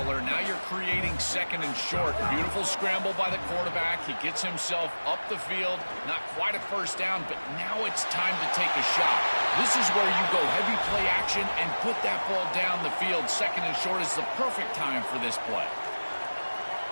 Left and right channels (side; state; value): both; inverted; correlation -1.00